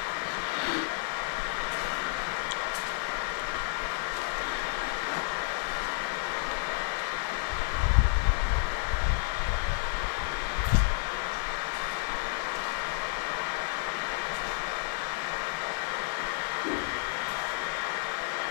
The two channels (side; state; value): right; silent; digital silence